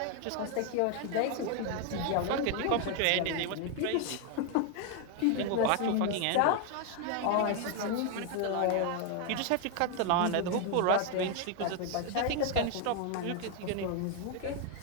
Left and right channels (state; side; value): different; both; correlation 0.00